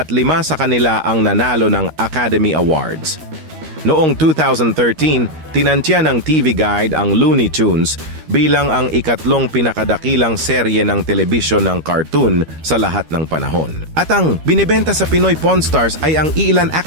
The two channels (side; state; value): left; late; 13 ms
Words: 5 sa kanila ang nanalo ng Academy Awards. Noong 2013, tinantya ng TV Guide ang Looney Tunes bilang ang ikatlong pinakadakilang serye ng telebisyon ng cartoon sa lahat ng panahon. At ang binibenta sa Pinoy Pawn Stars ay ang iilan